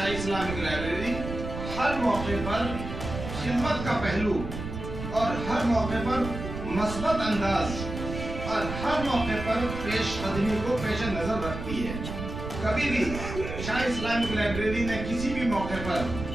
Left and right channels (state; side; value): noise; right; rumble, 7 dB below the sound